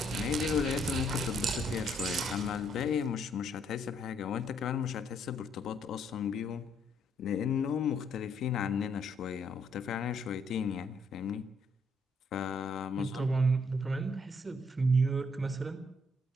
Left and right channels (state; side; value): normal; both; correlation 0.70